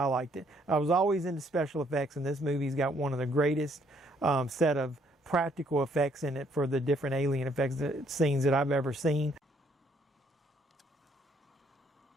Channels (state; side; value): normal; both; correlation 0.67